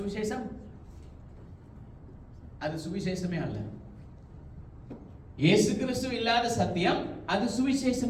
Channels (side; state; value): both; identical; correlation 1.00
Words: அது சுவிசேஷமே அல்ல. இயேசு கிறிஸ்து இல்லாத சத்தியம் அது